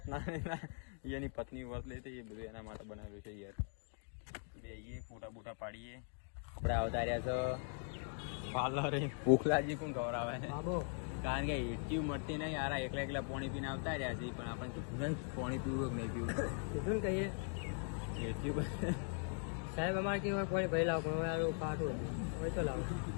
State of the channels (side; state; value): right; silent; 51 dB below the other